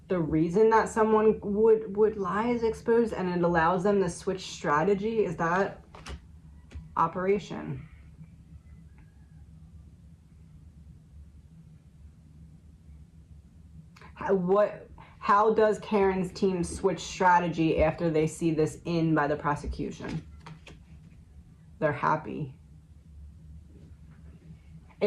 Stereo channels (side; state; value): both; identical; correlation 1.00